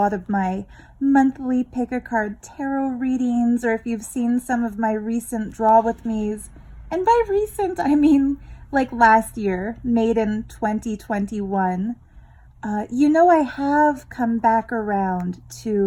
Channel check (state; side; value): identical; both; correlation 1.00